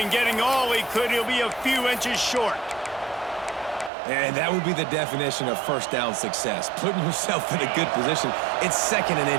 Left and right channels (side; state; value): left; drops out; at 3.9 s